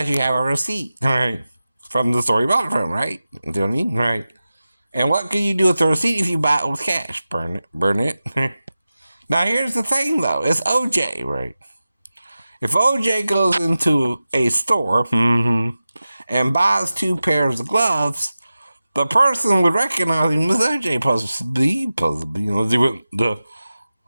you have a receipt, right? From the store you bought it from, right? You know what I mean? Right. And what can you do with the receipt if you buy it with cash? Burn it. Burn it. Now, here's the thing, though. It's OJ, right? If OJ goes into a store and buys 2 pairs of gloves, the person would recognize him as OJ, possibly, unless he went to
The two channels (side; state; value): both; inverted; correlation -0.95